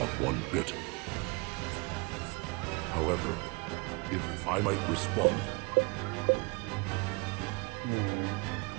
one bit. However, if I might respond...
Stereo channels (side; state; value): left; quieter; 28.2 dB